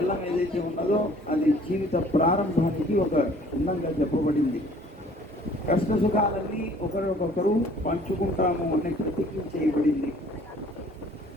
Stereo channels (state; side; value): normal; both; correlation 0.54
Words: ఏదైతే ఉన్నదో అది జీవిత ప్రారంభానికి ఒక చిహ్నంగా చెప్పబడింది. కష్ట సుఖాలన్నీ ఒకరికొకరు పంచుకుంటాము అనే ప్రతిజ్ఞ చేయబడింది.